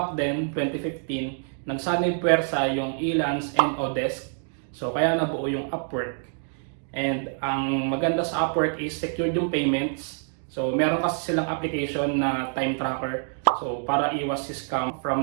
then, 2015, nagsanib puwersa yung Elance and Odesk. So kaya nabuo yung Upwork. And ang maganda sa Upwork is secured yung payments. So meron kasi silang application na time tracker. So para iwas si scam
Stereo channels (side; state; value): left; silent; 61 dB below the other